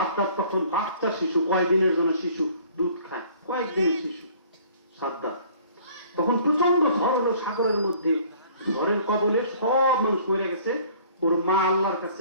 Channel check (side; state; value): both; inverted; correlation -0.54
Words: তখন বাচ্চা শিশু, কয়েকদিনের জন্য শিশু, দুধ খায়, কয়েকদিনের শিশু সাদ্দাত। তখন প্রচন্ড ঝড় হলো সাগরের মধ্যে, ঝড়ের কবলে সব মানুষ মরে গেছে। ওর মা আল্লাহর